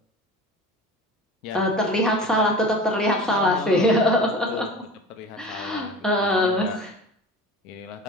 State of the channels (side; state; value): both; normal; correlation 0.37